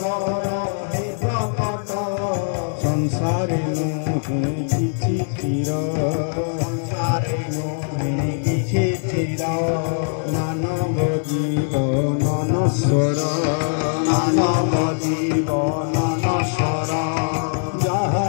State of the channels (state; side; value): silent; right; digital silence